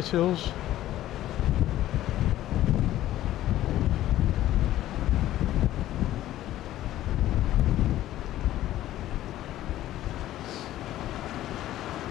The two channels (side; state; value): right; quieter; 13.8 dB